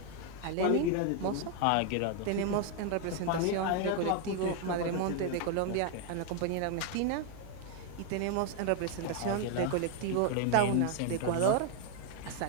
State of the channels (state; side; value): different; both; correlation 0.00